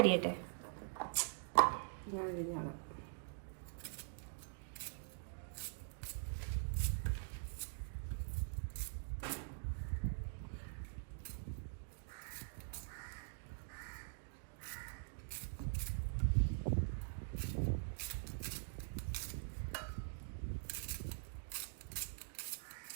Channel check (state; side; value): silent; left; digital silence